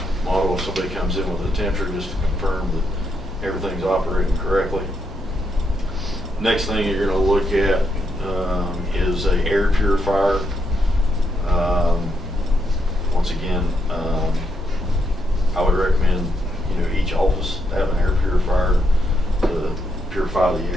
model if somebody comes in with a temperature, just to confirm that everything's operating correctly. Next thing you're going to look at is a air purifier. Once again, I would recommend each office have an air purifier to purify the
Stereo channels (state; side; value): normal; both; correlation 0.79